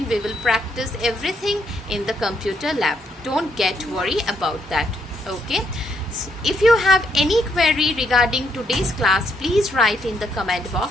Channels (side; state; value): both; normal; correlation 0.74